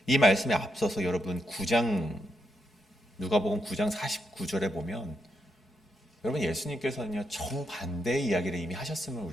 말씀에 앞서서 여러분 누가복음 9장 49절에 보면 여러분 예수님께서는요 정반대의 이야기를 이미 하셨음을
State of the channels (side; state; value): both; normal; correlation 0.82